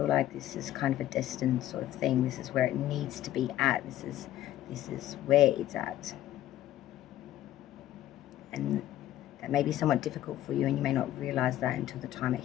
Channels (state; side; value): quieter; right; 13.4 dB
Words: like this is kind of a destined sort of thing. This is where it needs to be at. This is where it's at. And that may be somewhat difficult for you, and you may not realize that until the time it